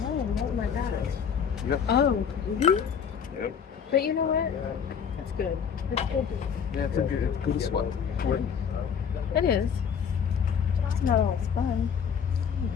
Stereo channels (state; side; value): quieter; right; 7.2 dB